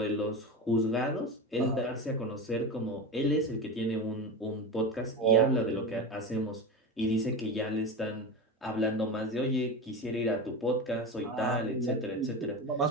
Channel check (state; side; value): normal; both; correlation 0.23